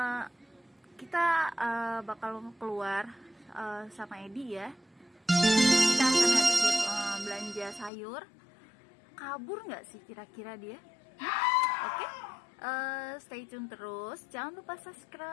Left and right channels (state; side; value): drops out; right; at 7.9 s